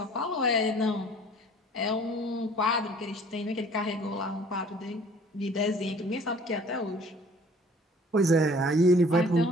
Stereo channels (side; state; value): both; normal; correlation 0.52